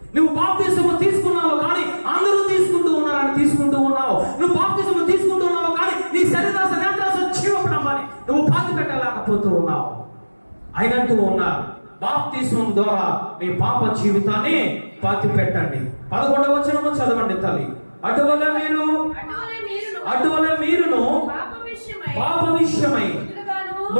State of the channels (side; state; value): both; inverted; correlation -1.00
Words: నువ్వు బాప్తిస్మము తీసుకున్నావు కానీ అందరూ తీసుకుంటూ ఉన్నారని తీసుకుంటూ ఉన్నావు. నువ్వు బాప్తిస్మము తీసుకుంటూ ఉన్నావు కానీ నీ శరీరాశ నేత్రాశ జీవపడమని నువ్వు పాతి పెట్టలేకపోతూ ఉన్నావు. ఆయన అంటూ ఉన్నారు, బాప్తిస్మం ద్వారా మీ పాప జీవితాన్ని పాతి పెట్టండి. 11వ వచనము చదవండి తల్లి. అటువల్ల మీరును పాప విషయమై